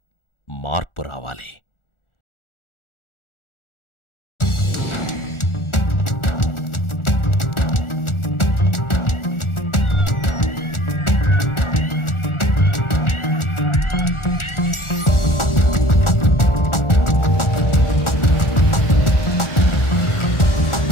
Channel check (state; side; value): late; right; 1.4 ms